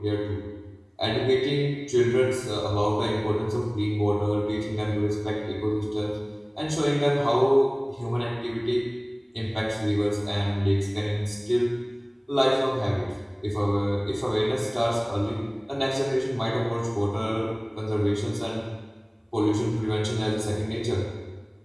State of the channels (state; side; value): identical; both; correlation 1.00